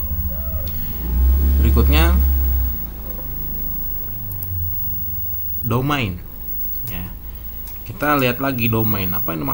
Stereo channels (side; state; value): both; identical; correlation 1.00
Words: Berikutnya domain. Ya. Kita lihat lagi domain. Apa yang